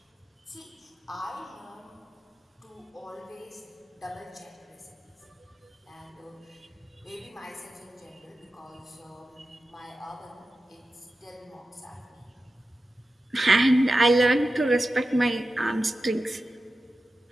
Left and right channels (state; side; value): normal; both; correlation 0.93